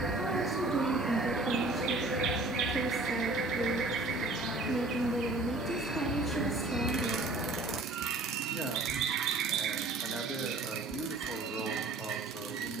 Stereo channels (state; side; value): quieter; left; 3.0 dB